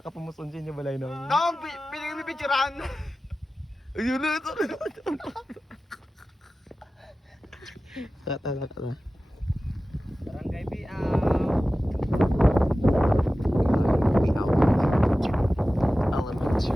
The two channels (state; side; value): normal; both; correlation 0.95